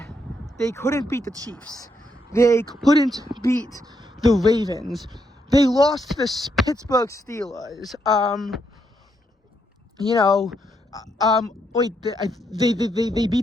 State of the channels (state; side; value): normal; both; correlation 0.77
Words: They couldn't beat the Chiefs. They couldn't beat the Ravens. They lost to the Pittsburgh Steelers. They